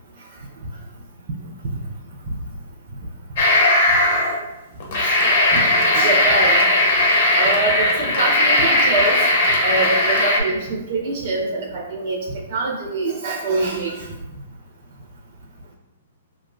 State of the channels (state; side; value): inverted; both; correlation -0.37